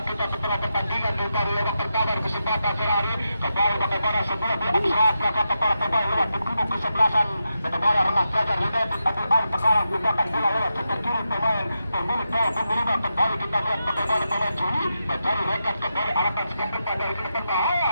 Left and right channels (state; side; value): inverted; both; correlation -0.87